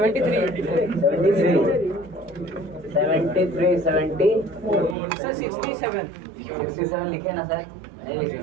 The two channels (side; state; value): left; drops out; at 5.0 s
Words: 73, 70. सर 67 लिखे ना सर? नहीं लिखे